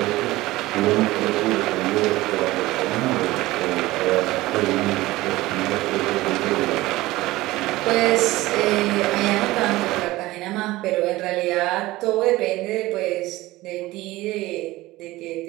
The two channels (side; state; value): left; quieter; 18.5 dB